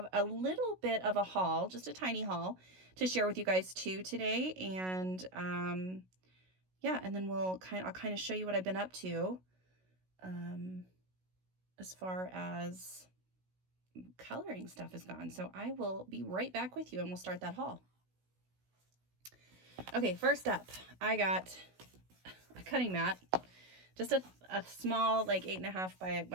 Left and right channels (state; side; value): late; left; 16 ms